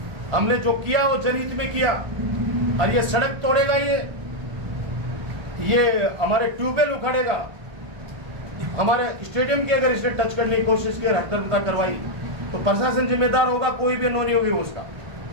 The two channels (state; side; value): late; left; 1.2 ms